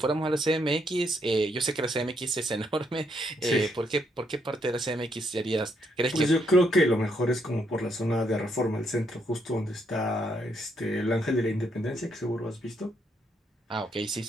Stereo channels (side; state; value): both; normal; correlation 0.75